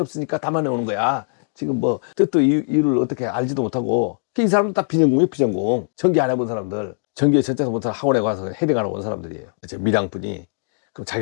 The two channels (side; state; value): right; silent; digital silence